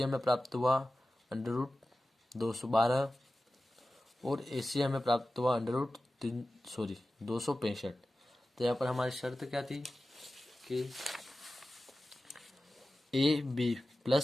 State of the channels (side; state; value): both; normal; correlation 0.95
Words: हमें प्राप्त हुआ √212 और AC हमें प्राप्त हुआ 265। तो यहाँ पर हमारी शर्त क्या थी कि AB